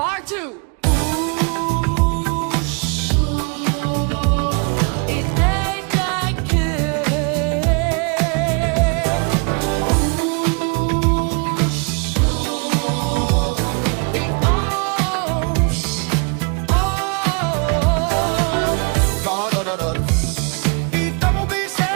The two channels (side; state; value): left; quieter; 35.4 dB